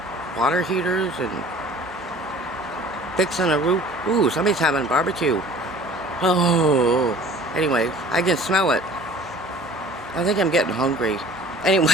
water heaters and fixing a roof? Ooh, somebody's having barbecue. Oh, anyway, I can smell it. I think I'm getting hungry.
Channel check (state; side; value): normal; both; correlation 0.47